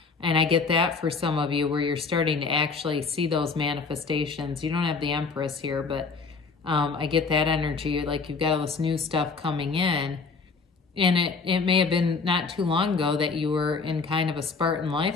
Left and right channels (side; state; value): right; quieter; 4.6 dB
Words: And I get that for some of you where you're starting to actually see those manifestations. You don't have the Empress here, but I get that energy, like you've got all this new stuff coming in. And it may have been not too long ago that you were in kind of a Spartan